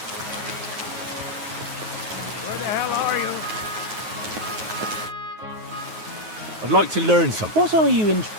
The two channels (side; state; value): left; late; 9.4 ms